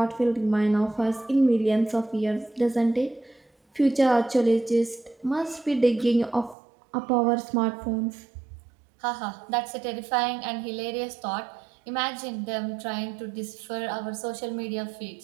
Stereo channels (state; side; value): drops out; left; at 6.6 s